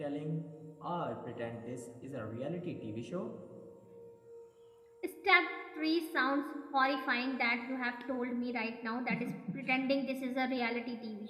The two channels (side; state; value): both; identical; correlation 1.00